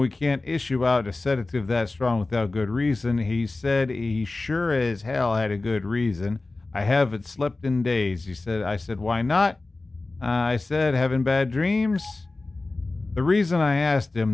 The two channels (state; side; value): quieter; right; 3.3 dB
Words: can't issue out a sedative that strong without good reason, he said he sure as hell had a good reason. I haven't slept in days. I said, why not? I said, having bad dreams? The reason I asked